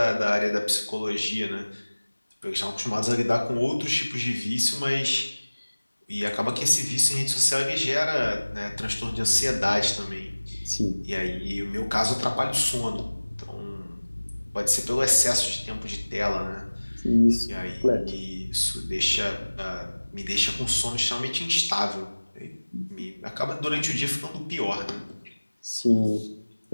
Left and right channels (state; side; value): inverted; both; correlation -1.00